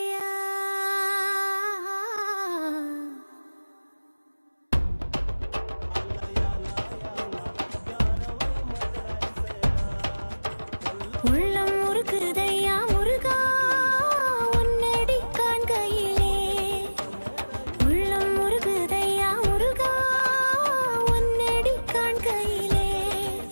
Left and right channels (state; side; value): inverted; both; correlation -1.00